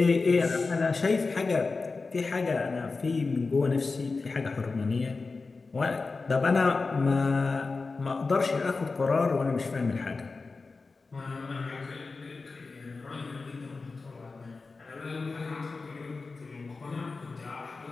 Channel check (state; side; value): quieter; right; 4.0 dB